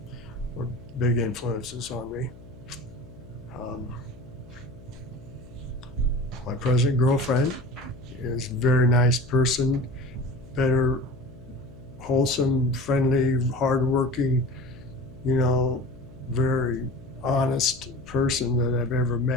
were big influences on me. My present girlfriend is a very nice person, better, wholesome, friendly, hardworking, very honest person that I've ever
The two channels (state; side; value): noise; left; hum, 20 dB below the sound